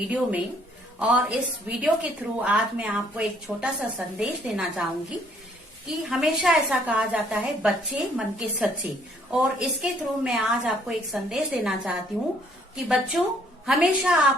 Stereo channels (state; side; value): normal; both; correlation 0.64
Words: में। और इस वीडियो के थ्रू आज मैं आपको एक छोटा सा संदेश देना चाहूंगी कि हमेशा ऐसा कहा जाता है बच्चे मन के सच्चे, और इसके थ्रू मैं आज आपको एक संदेश देना चाहती हूँ कि बच्चों हमेशा